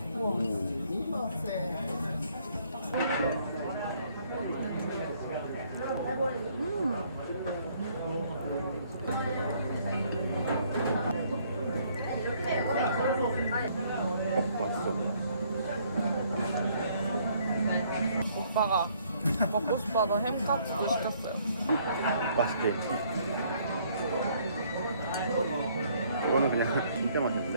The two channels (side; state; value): both; inverted; correlation -0.65